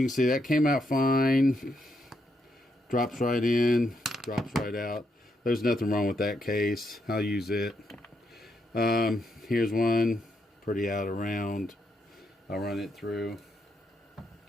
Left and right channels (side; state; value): both; normal; correlation 0.79